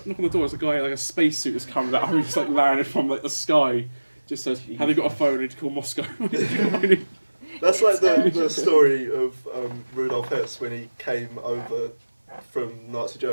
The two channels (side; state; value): both; inverted; correlation -1.00